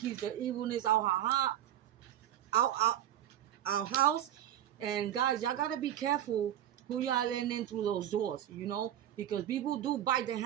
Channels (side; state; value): left; quieter; 11.6 dB